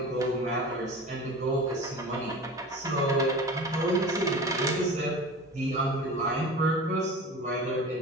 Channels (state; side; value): normal; both; correlation 0.34